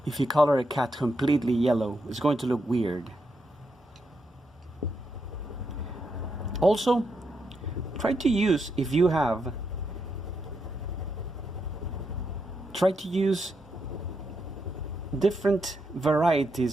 If you color a cat completely yellow, it's going to look weird. Also, try to use, if you have, try to use different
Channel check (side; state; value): both; normal; correlation 0.82